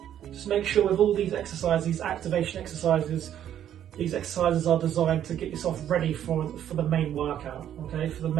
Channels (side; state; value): left; quieter; 10.5 dB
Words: Just make sure with all these exercises, these activation exercises, these exercises are designed to get yourself ready for the main workout, okay? For the